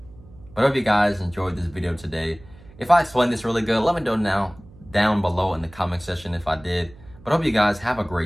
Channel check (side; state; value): right; noise; hum, 22 dB below the sound